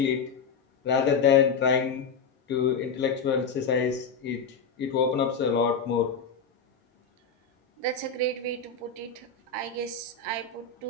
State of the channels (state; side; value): quieter; right; 5.3 dB